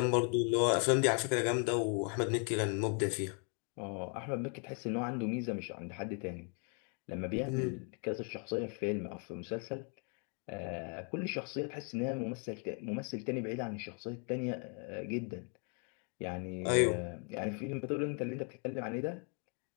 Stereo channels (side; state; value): right; quieter; 39.8 dB